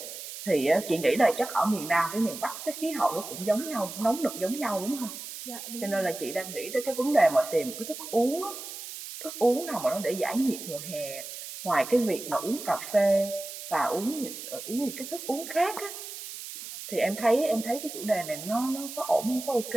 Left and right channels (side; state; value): right; noise; hiss, 10 dB below the sound